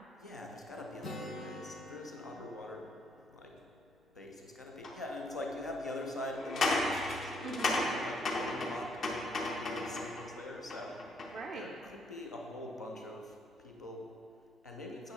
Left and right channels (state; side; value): normal; both; correlation 0.70